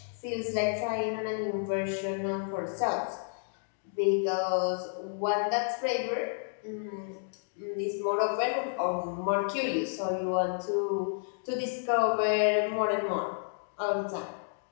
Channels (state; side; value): silent; right; digital silence